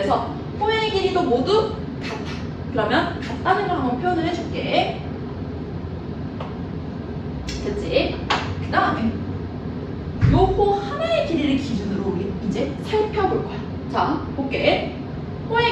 호의 길이도 모두 같아. 그러면 같다는 걸 한번 표현을 해줄게. 됐지? 그 다음에 요 호 하나의 길이를 기준으로 우리 이제 살펴볼 거야. 자, 볼게.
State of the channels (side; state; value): both; identical; correlation 1.00